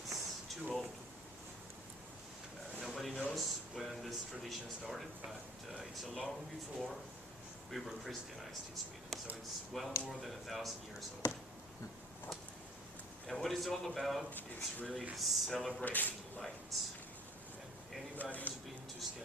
too old. Nobody knows when this tradition started, but it's a long before we were Christianized in Sweden, so it's well more than 1,000 years old. And what it's all about is really celebrating light. And anybody who's been to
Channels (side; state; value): both; normal; correlation 0.52